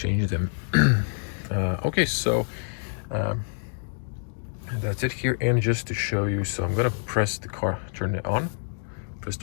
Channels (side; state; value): right; silent; digital silence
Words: them. Okay, so that's it here. And just to show you, so I'm gonna press the car, turn it on, press